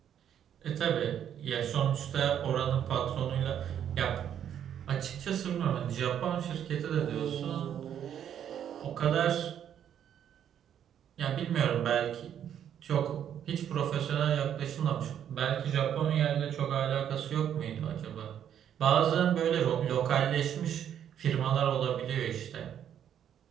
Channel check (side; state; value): left; quieter; 9.5 dB